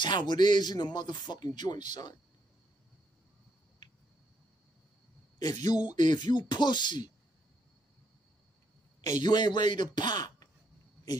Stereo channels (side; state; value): both; normal; correlation 0.74